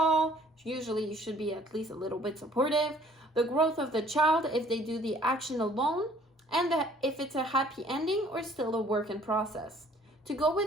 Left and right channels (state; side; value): normal; both; correlation 0.57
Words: Usually you should be at least a little bit supportive. The growth of the child, if they do the action alone, and if it's a happy ending or still a work in process. To go